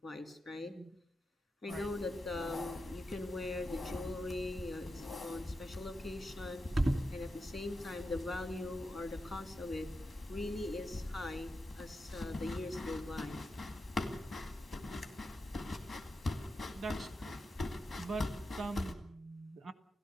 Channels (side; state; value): both; normal; correlation 0.89